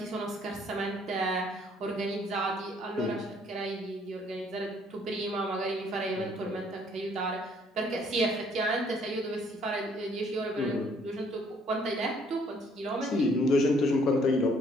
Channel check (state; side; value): normal; both; correlation 0.63